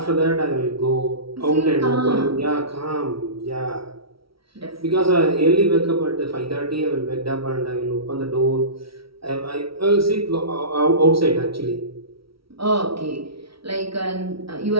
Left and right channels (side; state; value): left; late; 0.75 ms